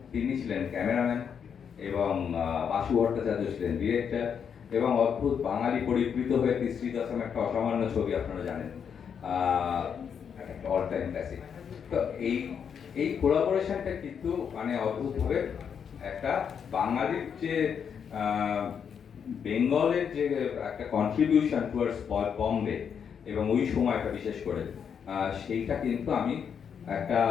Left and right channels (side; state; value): right; quieter; 7.3 dB